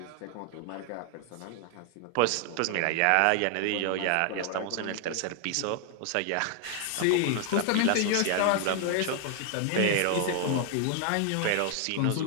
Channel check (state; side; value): different; both; correlation 0.00